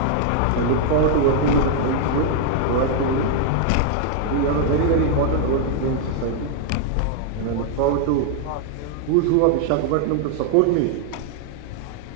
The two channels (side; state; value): both; different; correlation 0.00